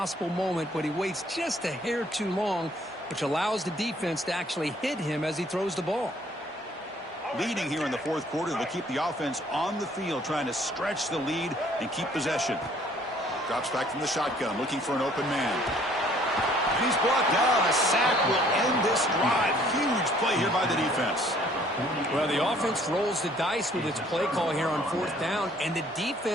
moment, but he waits just a hair too long, which allows the defense to actually hit him as he throws the ball. Leading here in the 4th quarter, they'll keep the offense on the field, trying to stretch the lead and keep possession. Drops back from the shotgun, looking for an open man. And he's brought down. A sack will end this drive. Huge play here by the defense. Well, the offense rolls the dice with its play call here on 4th down, and the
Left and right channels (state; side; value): normal; both; correlation 0.60